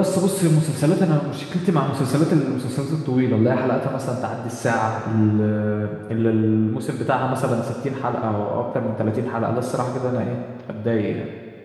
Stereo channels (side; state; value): both; identical; correlation 1.00